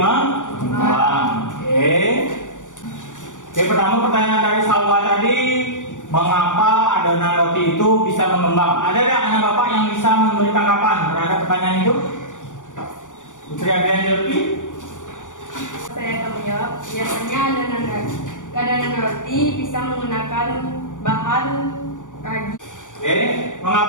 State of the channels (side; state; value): right; late; 0.87 ms